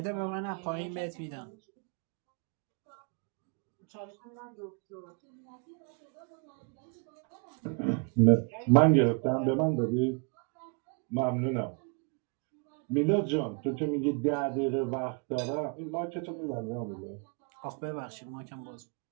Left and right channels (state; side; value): quieter; left; 35.9 dB